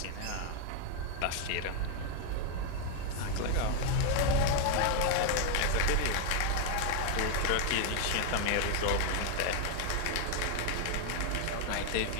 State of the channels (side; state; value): both; different; correlation 0.01